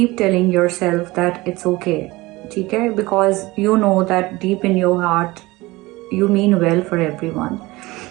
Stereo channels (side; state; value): left; quieter; 20.8 dB